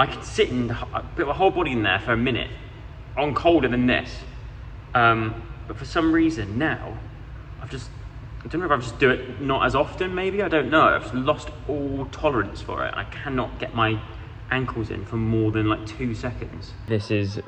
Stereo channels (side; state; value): both; identical; correlation 1.00